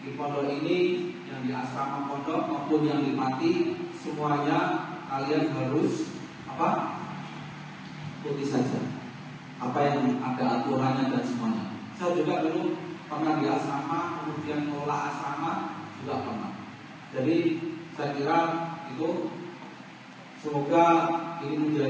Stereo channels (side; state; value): both; identical; correlation 1.00